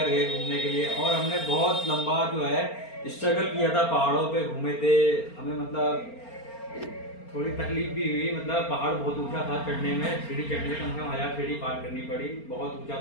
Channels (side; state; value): right; late; 4.3 ms